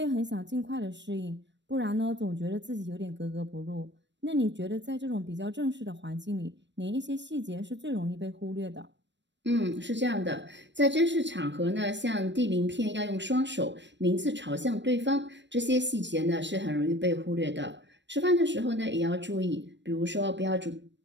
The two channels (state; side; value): late; left; 0.53 ms